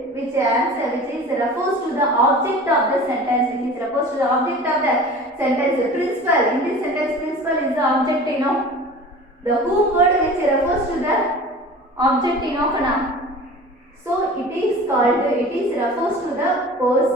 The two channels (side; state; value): both; normal; correlation 0.39